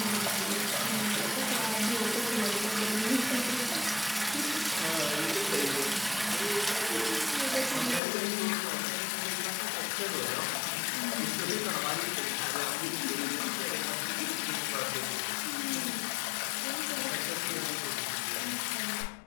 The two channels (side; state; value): right; drops out; at 8.0 s